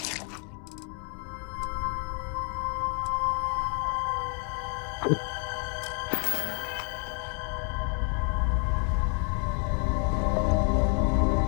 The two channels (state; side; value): quieter; right; 38.3 dB